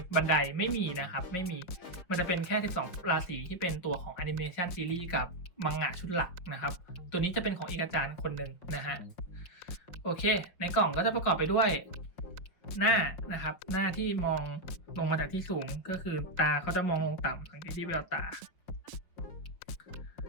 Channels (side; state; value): right; late; 5.5 ms